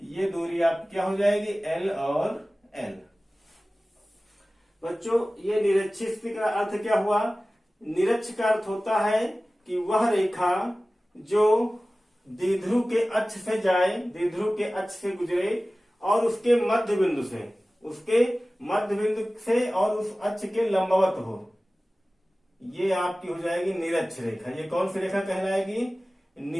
ये दूरी आप क्या हो जाएगी L और L। बच्चों, ये निरक्षीय स्थिति का अर्थ क्या हुआ? निरक्ष का अर्थ होता है कि वह रेखा जो द्विध्रुव के अक्ष से जाए, द्विध्रुव के अक्ष से गुजरे और उसके मध्य बिंदु से और उस अक्ष के लंबवत हो, ये आपकी हो जाएगी निरक्ष रेखा। ये कौन सी रेखा कहलाएगी?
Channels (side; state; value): both; normal; correlation 0.97